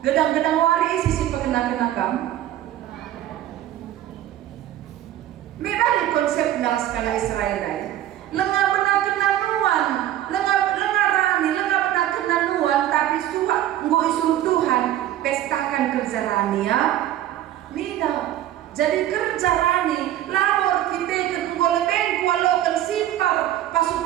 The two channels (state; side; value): quieter; left; 12.6 dB